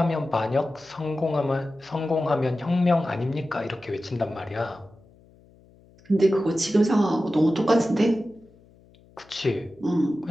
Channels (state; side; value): noise; left; hum, 28 dB below the sound